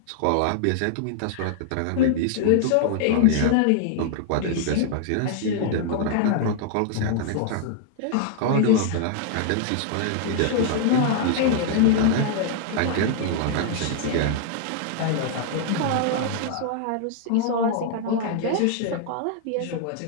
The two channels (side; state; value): both; different; correlation -0.01